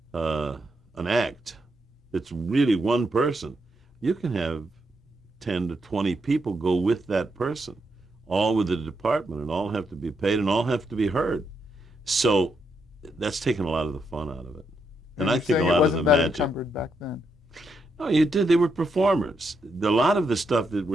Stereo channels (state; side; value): normal; both; correlation 0.80